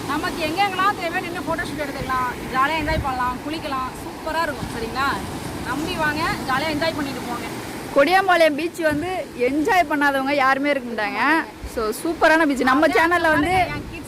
நமக்கு எங்கெங்கெல்லாம் தேவையான நின்று ஃபோட்டோ ஷூட் எடுத்துக்கலாம், ஜாலியாக என்ஜாய் பண்ணலாம், குளிக்கலாம். சூப்பராக இருக்கும். சரிங்களா? நம்பி வாங்க, ஜாலியாக என்ஜாய் பண்ணிட்டு போங்க. கொடியாம்பாளையம் பீச் வந்து என்ஜாய் பண்ணாதவங்க யாருமே இருக்க மாட்டாங்க. ஸோ சூப்பரான பீச். நம்ம சேனலில் வந்து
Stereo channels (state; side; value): identical; both; correlation 1.00